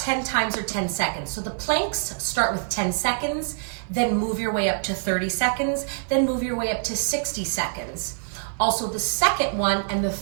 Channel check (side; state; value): left; silent; digital silence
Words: times or 10 seconds. So the planks start with 10 seconds, then move your way up to 30 seconds, then move your way up to 60 seconds. Also the second one and the